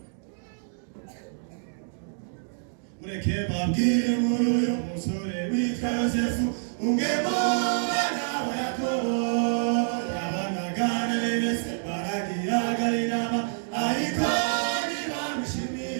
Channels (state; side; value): silent; left; digital silence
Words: Mureke babwire muri uyu musore witwa Yosefu umwe mu bana ba Yakobo yabanaga na bene se baragiraga inama ariko